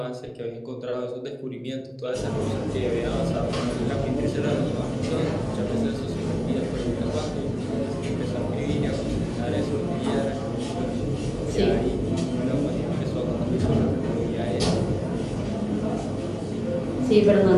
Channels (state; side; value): identical; both; correlation 1.00